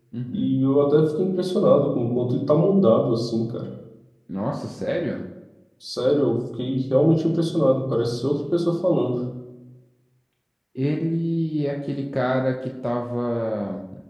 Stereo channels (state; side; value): identical; both; correlation 1.00